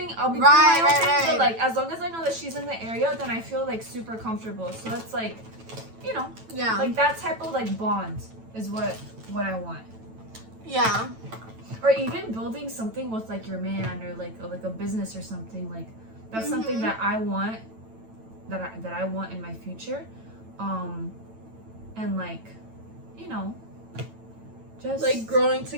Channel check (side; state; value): left; late; 9.0 ms